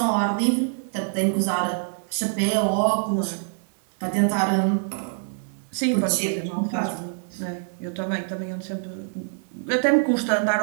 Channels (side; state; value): left; silent; 62 dB below the other